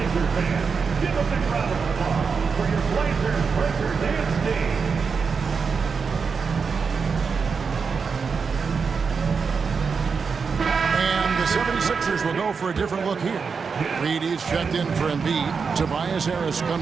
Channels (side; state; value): left; quieter; 5.5 dB